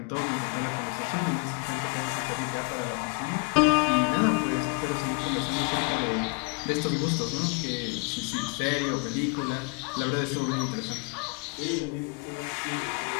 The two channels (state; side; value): quieter; right; 32.1 dB